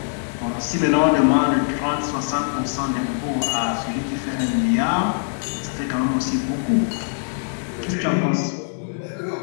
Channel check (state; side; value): silent; right; digital silence